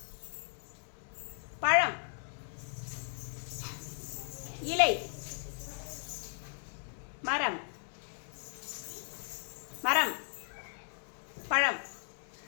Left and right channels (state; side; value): silent; right; digital silence